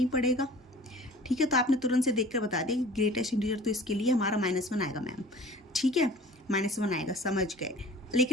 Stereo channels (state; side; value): normal; both; correlation 0.45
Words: पड़ेगा। ठीक है, तो आपने तुरंत से देखकर बता दिया कि ग्रेटेस्ट इंटीजर तो इसके लिए हमारा -1 आएगा मैम। ठीक है, -1 आएगा, समझ गए।